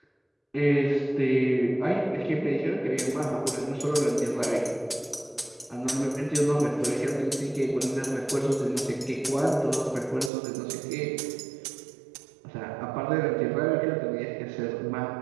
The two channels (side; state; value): left; drops out; at 10.3 s